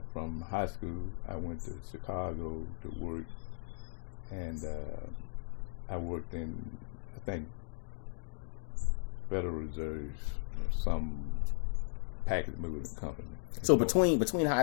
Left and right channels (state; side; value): silent; right; digital silence